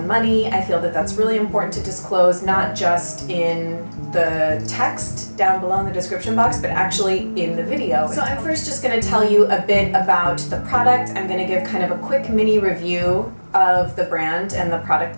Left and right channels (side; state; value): both; inverted; correlation -1.00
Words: money. I feel that that's really important to disclose, not just in the text down below in the description box, but actually in the video. So I'm first just gonna tell you a bit about the product. I'm gonna give kind of a quick mini review of the brand and the product